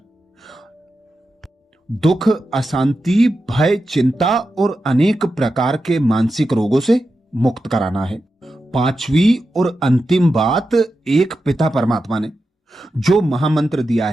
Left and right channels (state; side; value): normal; both; correlation 0.90